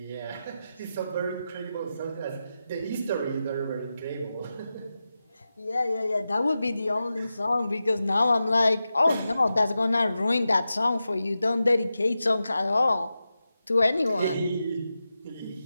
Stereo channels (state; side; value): inverted; both; correlation -0.91